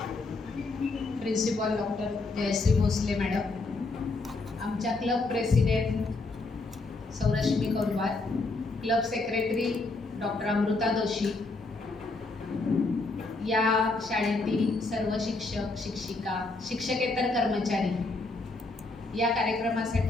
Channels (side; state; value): right; quieter; 3.4 dB